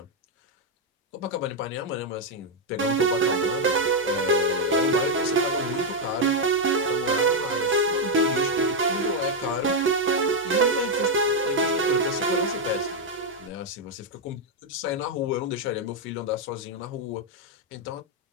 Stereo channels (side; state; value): both; normal; correlation 0.01